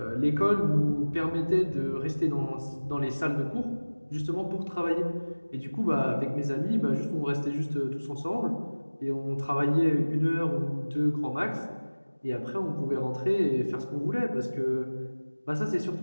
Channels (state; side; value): inverted; both; correlation -1.00